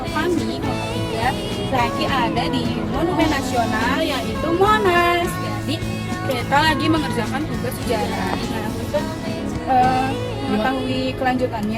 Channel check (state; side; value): identical; both; correlation 1.00